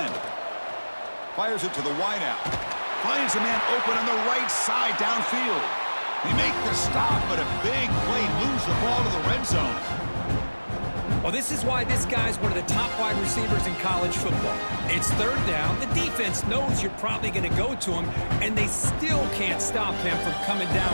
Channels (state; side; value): inverted; both; correlation -1.00